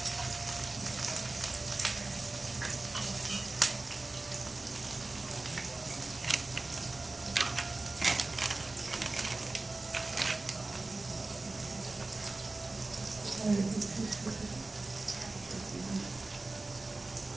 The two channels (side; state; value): left; quieter; 3.2 dB